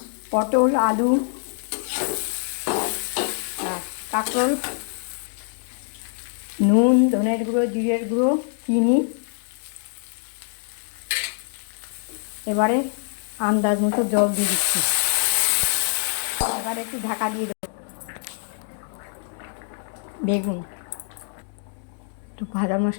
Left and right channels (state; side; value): silent; right; digital silence